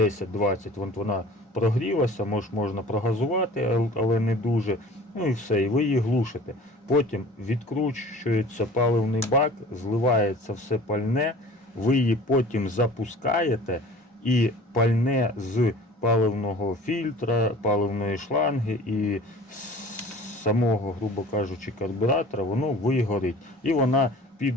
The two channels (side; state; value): both; normal; correlation 0.44